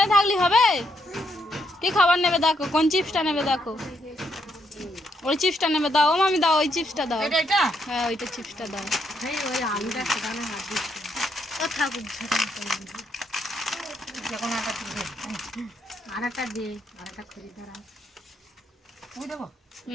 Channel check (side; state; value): both; normal; correlation 0.76